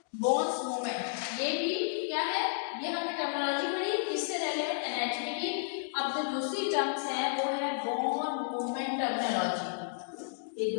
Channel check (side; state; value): right; silent; digital silence